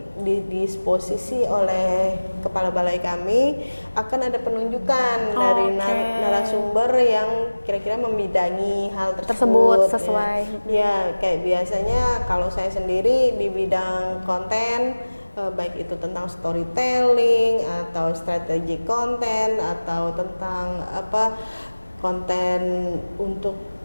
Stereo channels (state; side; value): inverted; both; correlation -1.00